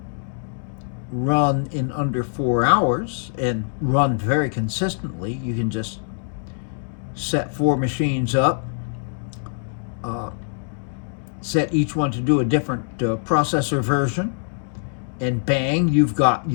run in under 4 hours and run very consistently. You can just set 4 machines up, uh, set each one to do a different processor version, and bang, you've got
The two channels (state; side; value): silent; right; digital silence